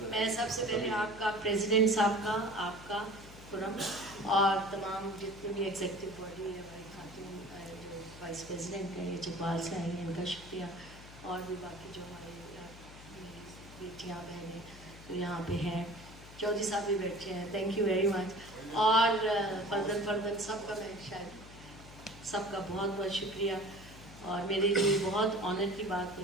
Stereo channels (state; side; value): noise; left; hum, 17 dB below the sound